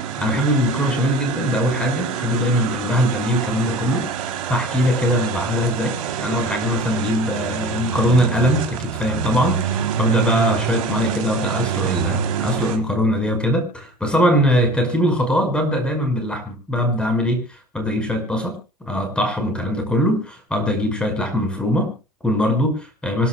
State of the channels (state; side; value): normal; both; correlation 0.42